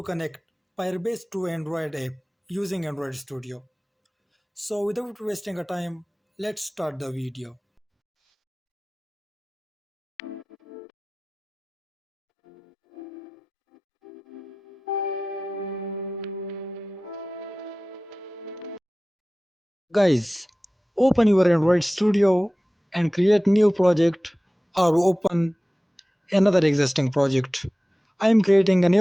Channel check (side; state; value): both; normal; correlation 0.97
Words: connect Firebase to Android app using Android Studio. So without wasting a time, let's start the video. Guys, open your Android Studio and create new project or open another existing project. I am creating a